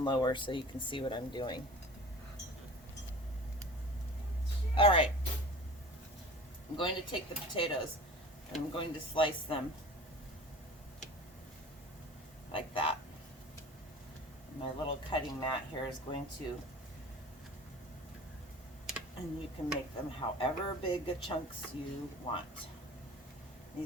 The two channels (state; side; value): normal; both; correlation 0.40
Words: lower so you can see what I'm doing. All right, I'm going to take the potatoes and I'm going to slice them like that. My little cutting mat here is going to, and you can make them however big of chunks you want.